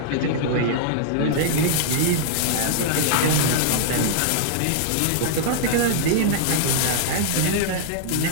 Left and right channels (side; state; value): both; different; correlation -0.01